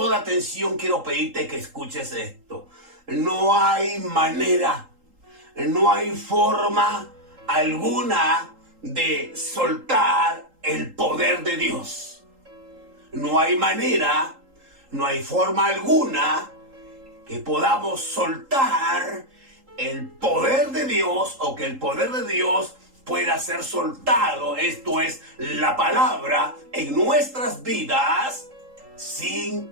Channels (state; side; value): late; left; 3.8 ms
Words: atención quiero pedirte que escuches esto. No hay manera, no hay forma alguna de soltar el poder de Dios. No hay manera, no hay forma alguna que podamos soltar el poder de Dios, o que el poder de Dios pueda ser soltado, esto es, la palabra, en nuestras vidas, sin